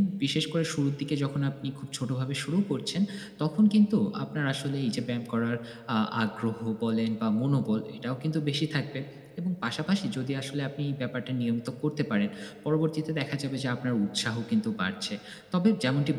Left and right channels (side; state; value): both; identical; correlation 1.00